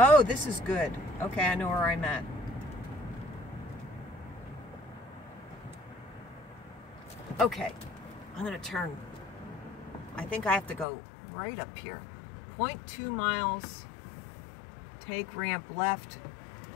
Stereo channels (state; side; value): drops out; right; at 10.9 s